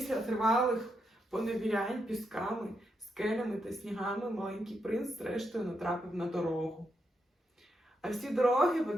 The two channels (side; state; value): both; normal; correlation 0.82